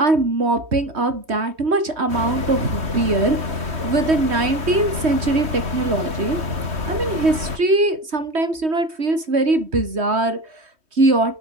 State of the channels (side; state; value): left; late; 3.2 ms